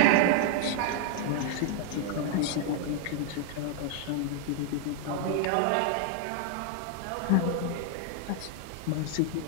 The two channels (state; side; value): different; both; correlation 0.00